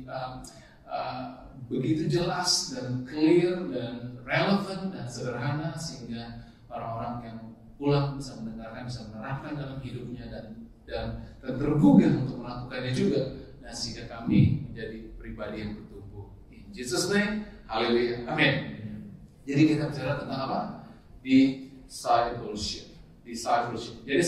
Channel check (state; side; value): identical; both; correlation 1.00